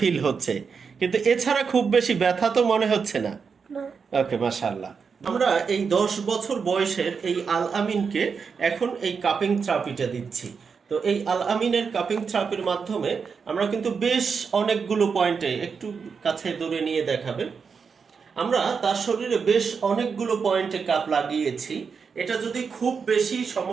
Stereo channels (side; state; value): left; quieter; 5.7 dB